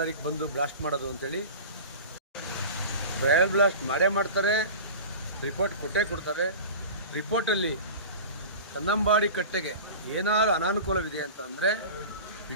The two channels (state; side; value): inverted; both; correlation -0.34